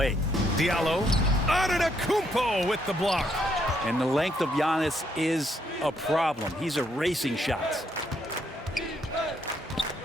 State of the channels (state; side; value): normal; both; correlation 0.73